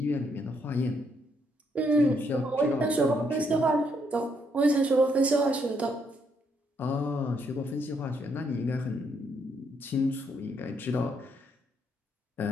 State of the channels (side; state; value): both; normal; correlation 0.73